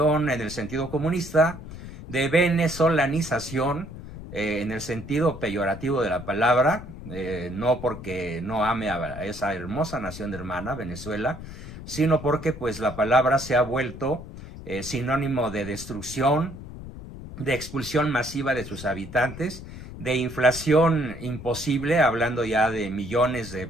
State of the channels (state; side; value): noise; left; rumble, 12 dB below the sound